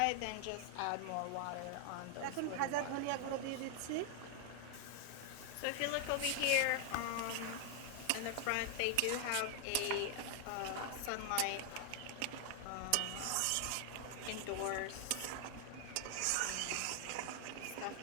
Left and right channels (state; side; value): different; both; correlation 0.00